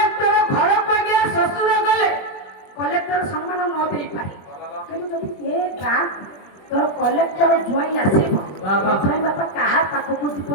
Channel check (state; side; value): late; right; 21 ms